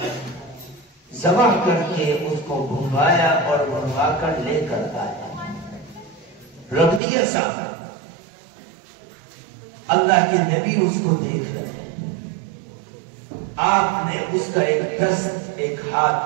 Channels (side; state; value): left; drops out; at 7.0 s